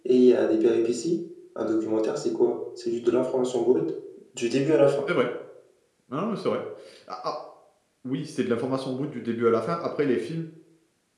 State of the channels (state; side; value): identical; both; correlation 1.00